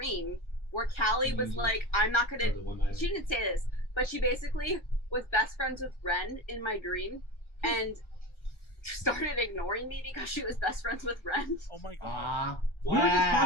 where Callie was like, I'm not gonna. She didn't say this, but she basically was best friends with Ren in my dream, and started ignoring me because she was best friends with Ren. Oh my god! We were just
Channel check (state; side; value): late; right; 1.4 ms